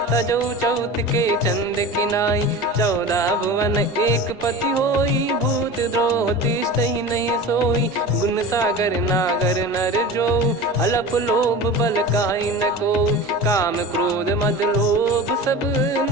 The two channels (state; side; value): normal; both; correlation 0.32